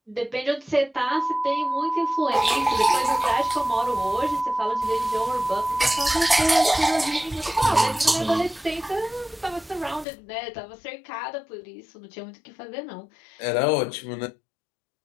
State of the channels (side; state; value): right; drops out; at 10.1 s